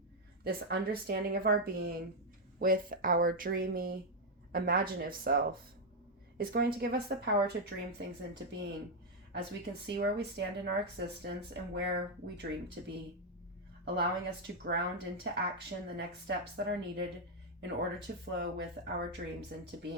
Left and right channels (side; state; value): both; normal; correlation 0.01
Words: this understanding of our being with our dreamy, imaginative self, is going to give us the power to dream things into being as we can see where we stand in our existence and where we dream to be, allowing us to ground into action the next steps that are needed in order to flow with our dreams into